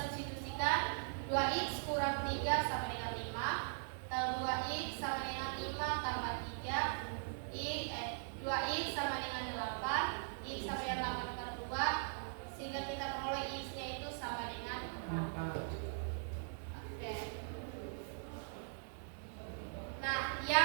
2X kurang 3 sama dengan 5, atau 2X sama dengan 5 tambah 3, 2X sama dengan 8, X sama dengan 8 per 2, sehingga kita peroleh X-nya itu sama dengan 4. Oke. Nah,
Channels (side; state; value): left; silent; 51 dB below the other